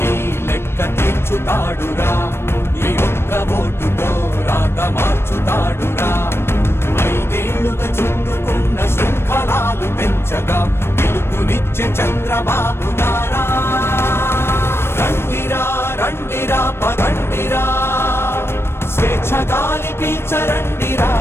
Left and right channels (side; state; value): right; late; 0.12 ms